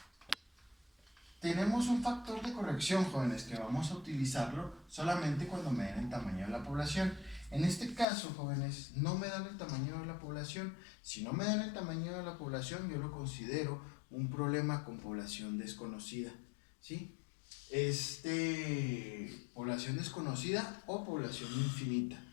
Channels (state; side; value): drops out; right; at 8.1 s